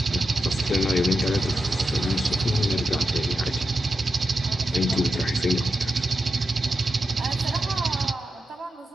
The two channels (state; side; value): normal; both; correlation 0.89